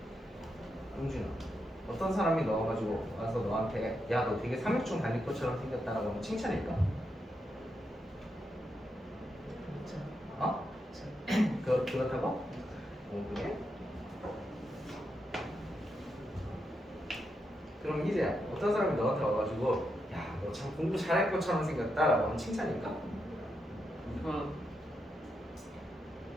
용준아, 어떤 사람이 넣어가지고 와서 너한테 야 너 되게 삼육중 다닐 것처럼 생겼다라고 하면 칭찬일까? 어? 그렇다고? 그래? 그럼 이제 어떤 사람이 너한테 와가지고 야 너 참 공부 잘할 것처럼 생겼다라고 하면 칭찬일까?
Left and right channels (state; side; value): normal; both; correlation 0.84